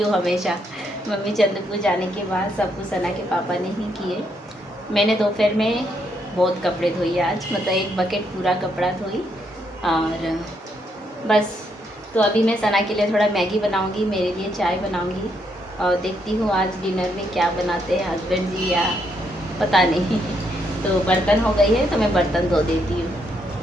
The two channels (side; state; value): both; normal; correlation 0.76